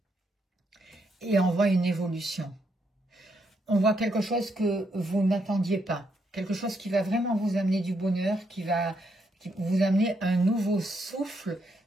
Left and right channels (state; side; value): normal; both; correlation 0.77